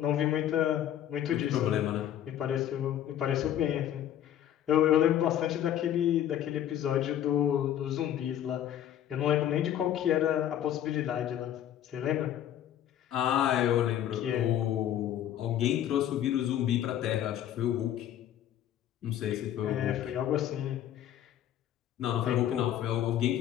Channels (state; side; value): quieter; right; 11.1 dB